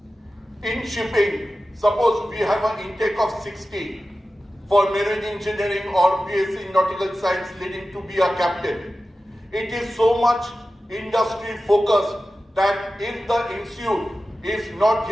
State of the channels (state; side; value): normal; both; correlation 0.94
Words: In shipping, suppose we have an intake of 60 for marine engineering or BSc in nautical science leading to be a captain. It is so much industry focused that if the institute is not